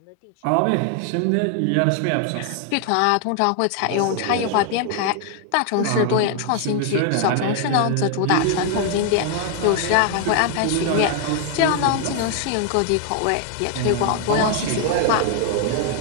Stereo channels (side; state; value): both; different; correlation 0.00